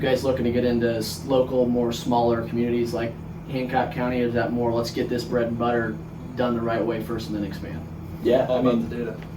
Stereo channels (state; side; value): identical; both; correlation 1.00